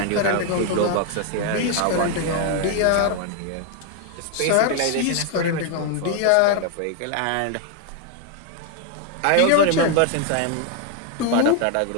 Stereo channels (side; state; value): both; different; correlation 0.01